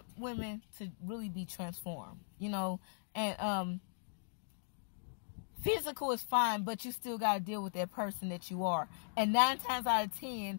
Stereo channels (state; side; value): silent; right; digital silence